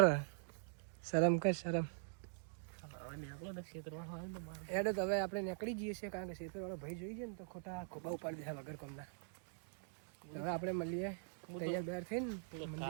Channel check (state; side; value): silent; left; digital silence